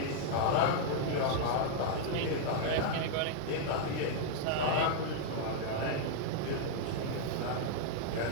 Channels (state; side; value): different; both; correlation -0.01